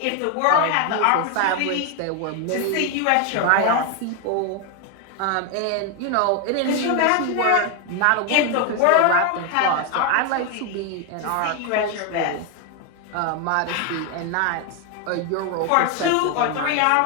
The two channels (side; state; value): both; different; correlation 0.01